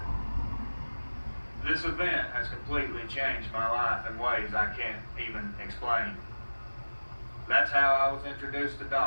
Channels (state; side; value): inverted; both; correlation -1.00